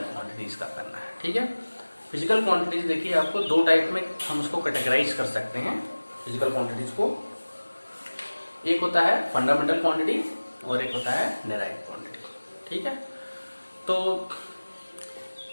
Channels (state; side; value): inverted; both; correlation -1.00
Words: क्वांटिटीज का करना है। ठीक है, फिजिकल क्वांटिटीज देखिए आपको दो टाइप में हम उसको कैटेगराइज कर सकते हैं फिजिकल क्वांटिटीज को। एक होता है फंडामेंटल क्वांटिटी और एक होता है डेराइव्ड क्वांटिटी। ठीक है, तो